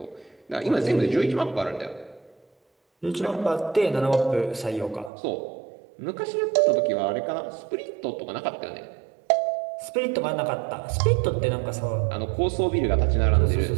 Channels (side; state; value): left; drops out; at 5.1 s